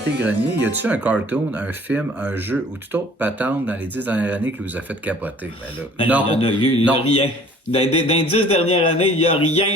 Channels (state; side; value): normal; both; correlation 0.52